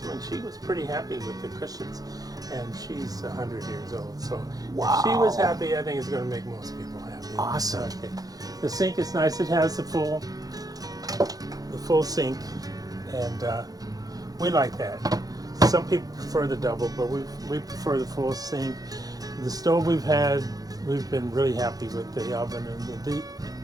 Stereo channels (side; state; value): left; late; 0.18 ms